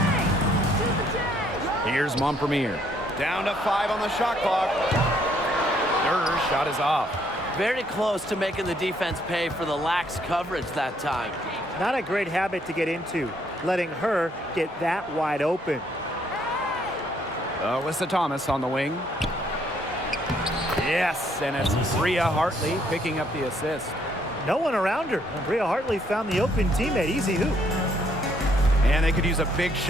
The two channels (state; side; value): normal; both; correlation 0.68